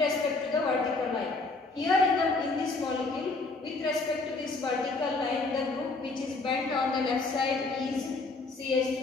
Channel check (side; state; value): right; quieter; 3.6 dB